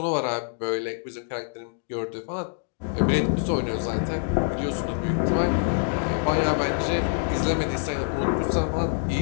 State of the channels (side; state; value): right; silent; digital silence